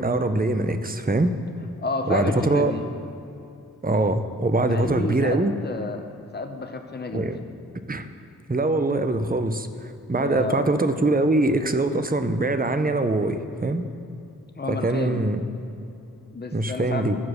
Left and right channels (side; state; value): both; normal; correlation 0.55